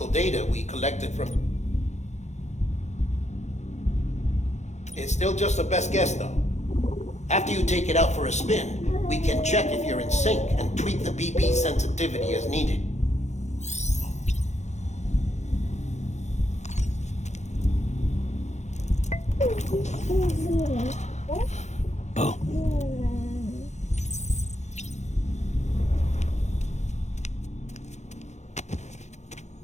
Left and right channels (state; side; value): late; right; 0.33 ms